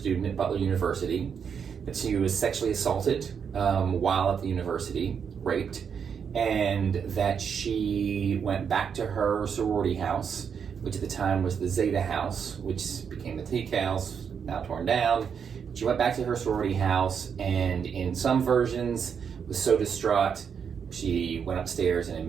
at Butler University, that she was sexually assaulted while at the university, raped, and that she went back to her sorority house, which at the time was the Zeta House, which became the Teak House, now torn down. She went back to her sorority house, and in some versions was so distraught she went upstairs and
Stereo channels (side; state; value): left; quieter; 7.0 dB